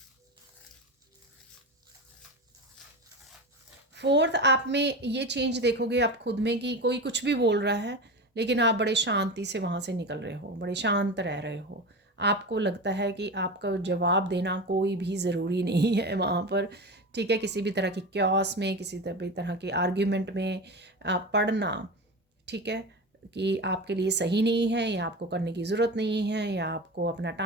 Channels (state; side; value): normal; both; correlation 0.26